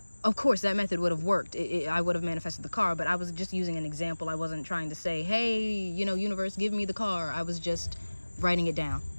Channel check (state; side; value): inverted; both; correlation -1.00